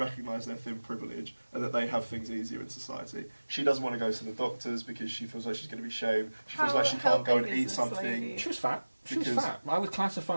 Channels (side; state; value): both; inverted; correlation -1.00